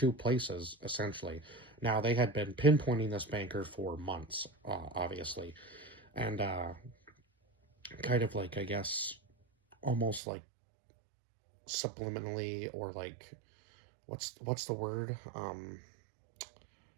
places, essentially. Now, they had been pinpointing this banker for months, obviously, and kind of like, I guess, almost like subliminally, or like, what's the word?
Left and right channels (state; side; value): drops out; left; at 10.2 s